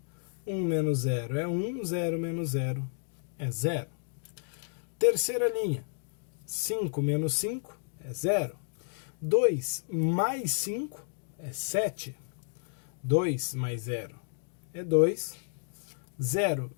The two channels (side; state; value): right; silent; digital silence